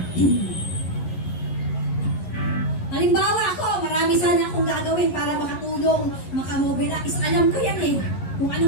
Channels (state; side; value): late; right; 11 ms